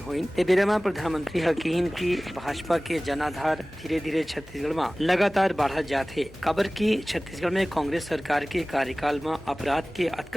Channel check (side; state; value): both; normal; correlation 0.98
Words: बेरे में प्रधानमंत्री कहन की भाजपा के जनाधार धीरे धीरे छत्तीसगढ़ में लगातार बढ़ा जाते। खबर की छत्तीसगढ़ में कांग्रेस सरकार के कार्यकाल में अपराध के